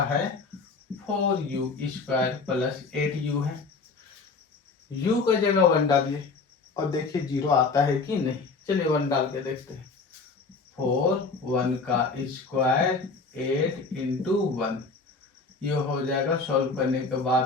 है 4u² प्लस 8u है। u का जगह 1 डालिए और देखिए 0 आता है कि नहीं। चलिए 1 डाल के देखते हैं। 4 1 का स्क्वायर 8 इंटू 1, ये हो जाएगा सॉल्व करने के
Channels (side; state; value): right; quieter; 4.2 dB